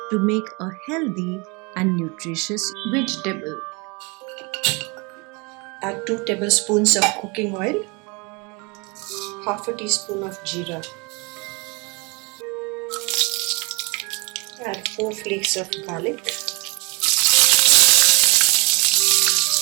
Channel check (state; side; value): quieter; left; 28.6 dB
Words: to make a healthy and nutritious vegetable. Add 2 tablespoons of cooking oil, half a teaspoon of jeera. Add 4 flakes of garlic.